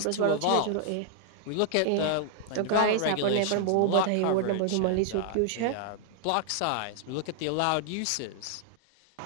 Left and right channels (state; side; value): different; both; correlation 0.00